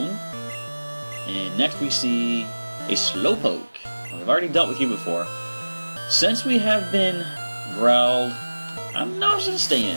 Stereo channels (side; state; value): both; inverted; correlation -1.00